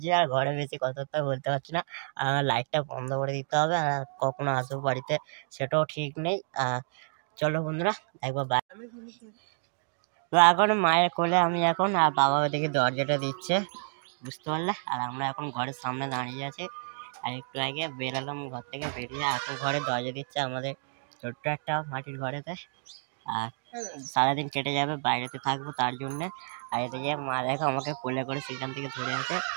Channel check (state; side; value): silent; left; 58 dB below the other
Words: আর ঘরে বেশি কথাবার্তা বলতে পারছি না, লাইটটা বন্ধ করে দিতে হবে, আর কখনো আসবো বাড়িতে সেটাও ঠিক নেই। চলো বন্ধুরা, একবার তো এখন মায়ের কোলে আমি এখন, আর বাবা ওদিকে দরজাটা দিচ্ছে, বুঝতে পারলে। আর আমরা এখন ঘরের সামনে দাঁড়িয়ে আছি, আর একটু আগে বেরোলাম ঘর থেকে, বেরিয়ে এখন ঘরে দরজা দিচ্ছে আমাদের ছোট্ট একটা মাটির ঘরেতে। আর সারাদিন কেটে যাবে, বাইরেতে থাকবো তার জন্যে। আর এদিকে মা দেখো আমাকে কোলে করে সেখান থেকে ধরে আছে।